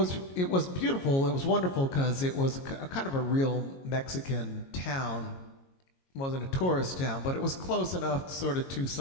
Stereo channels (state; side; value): late; right; 22 ms